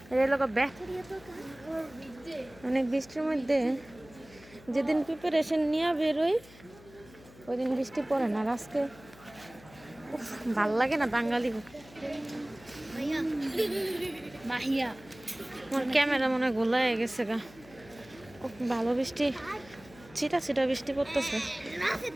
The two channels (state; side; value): noise; left; hum, 22 dB below the sound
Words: অনেক বৃষ্টির মধ্যে যেদিন প্রিপারেশন নিয়ে বেরোই ওই দিন বৃষ্টি পড়ে না, আর আজকে ভাল লাগে না বাঙালি। মাহিয়া মাহিয়া আমার ক্যামেরা মনে হয় গোলায় গেছে গা। খুব ভালো বৃষ্টি, ছিটা ছিটা বৃষ্টি পড়তেছে।